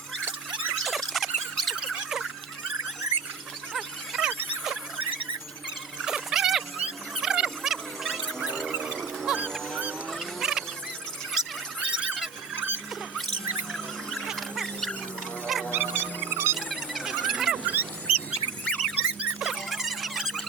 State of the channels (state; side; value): quieter; left; 5.5 dB